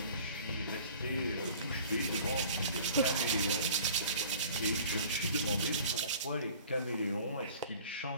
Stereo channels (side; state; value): both; inverted; correlation -0.46